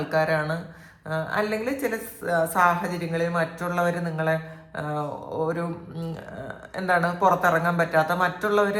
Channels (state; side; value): identical; both; correlation 1.00